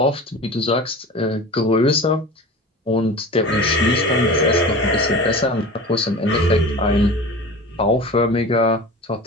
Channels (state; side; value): normal; both; correlation 0.35